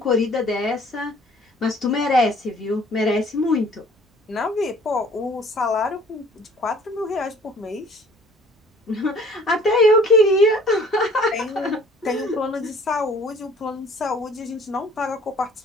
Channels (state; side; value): normal; both; correlation 0.54